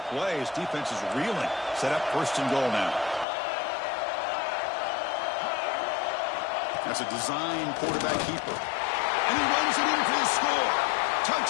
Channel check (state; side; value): drops out; right; at 3.2 s